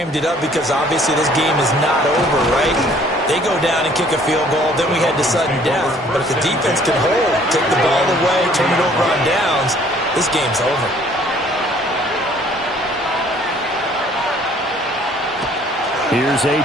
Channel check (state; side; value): normal; both; correlation 0.58